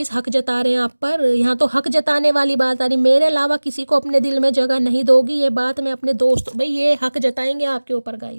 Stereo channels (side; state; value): both; inverted; correlation -1.00